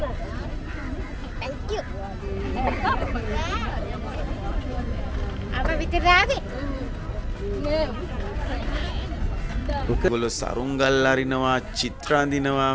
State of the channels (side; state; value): both; identical; correlation 1.00